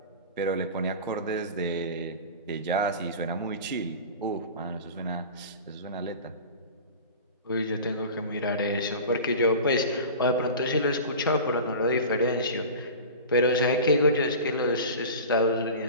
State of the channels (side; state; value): both; inverted; correlation -0.34